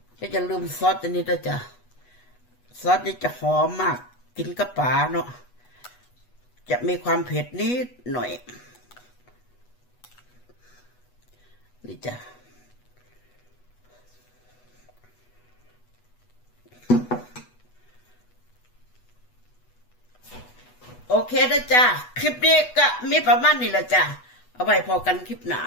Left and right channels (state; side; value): late; right; 8.2 ms